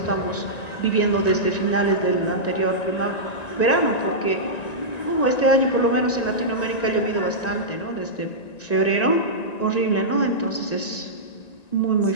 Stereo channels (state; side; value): late; right; 1.9 ms